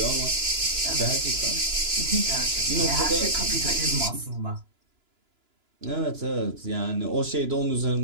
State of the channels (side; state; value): left; late; 2.9 ms